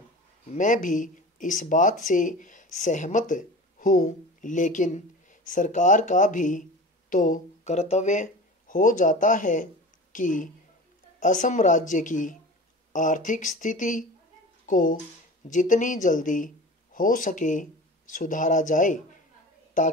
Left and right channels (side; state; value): both; normal; correlation 0.35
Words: मैं भी इस बात से सहमत हूँ, लेकिन सरकार का भी तो कर्तव्य हो जाता है कि असम राज्य की आर्थिक स्थिति को जितनी जल्दी हो सके सुधारा जाए,